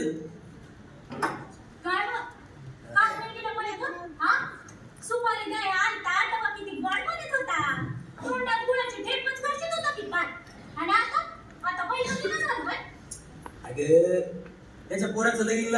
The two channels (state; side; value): identical; both; correlation 1.00